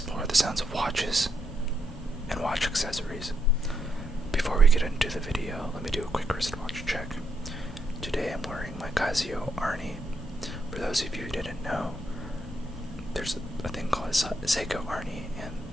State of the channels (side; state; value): both; normal; correlation 0.78